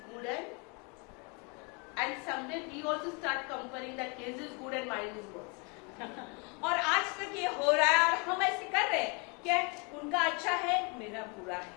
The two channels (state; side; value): quieter; right; 32.6 dB